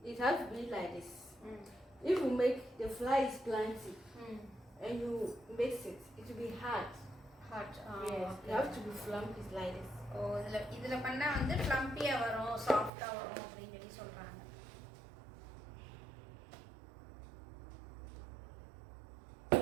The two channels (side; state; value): left; drops out; at 12.9 s